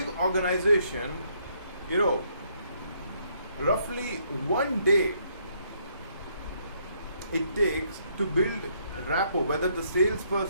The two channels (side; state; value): both; inverted; correlation -0.70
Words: organization, roughly 1 day it takes to build rapport, whether the